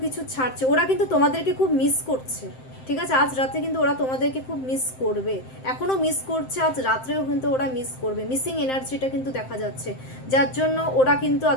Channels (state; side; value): late; right; 7.7 ms